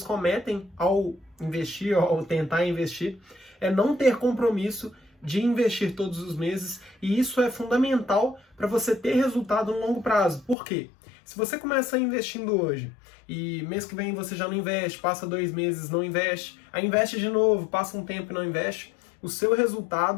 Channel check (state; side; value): drops out; right; at 10.6 s